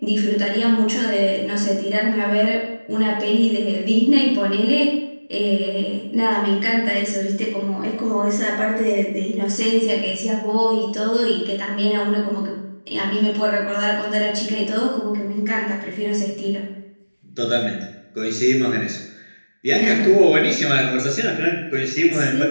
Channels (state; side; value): inverted; both; correlation -1.00